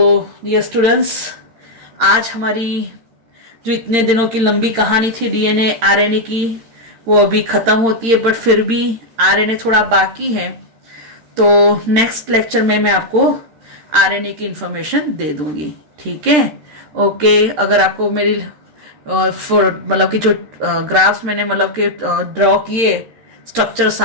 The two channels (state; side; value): late; left; 13 ms